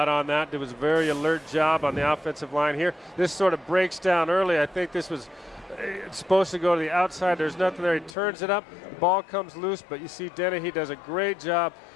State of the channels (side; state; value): right; drops out; at 8.2 s